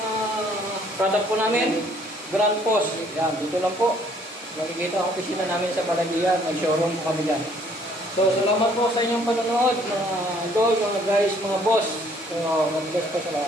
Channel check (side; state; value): both; normal; correlation 0.61